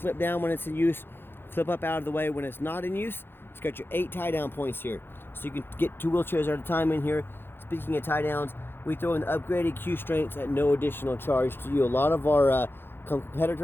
down when it's in use, flip up out of the way when it's not in use. It's got your 8 tie down points here. So you can get 2 wheelchairs at a time in here. Speaking of tie downs, we throw in the upgraded Q strengths at no additional charge to you. A lot of our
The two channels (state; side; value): late; right; 0.10 ms